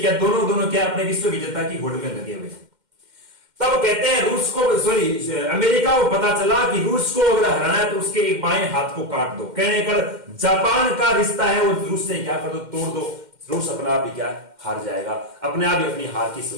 क्या, दोनों क्या अपने विश्व विजेता की होड़ में लगे हुए। तब कहते हैं रूस को, अमेरिका को पता चला कि रूस को अगर हराना है तो उसके एक बाएं हाथ को काट दो। कहने कर जापान का रिश्ता है वो रूस से क्या कर दो, तोड़ दो। रूस अपने आप ही क्या हार जाएगा, अपने आप ही अपनी हार की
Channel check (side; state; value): left; late; 2.1 ms